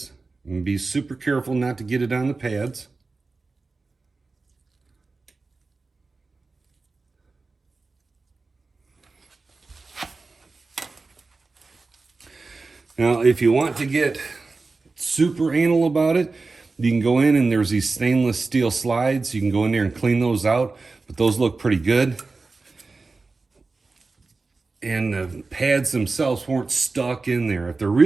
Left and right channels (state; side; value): quieter; left; 3.8 dB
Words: And be super careful not to get it on the pads. Now, if you want to get super anal about it, you can go in and there's these stainless steel slides. You can go in there and clean those out, but those look pretty good. And the pads themselves weren't stuck in there. If they're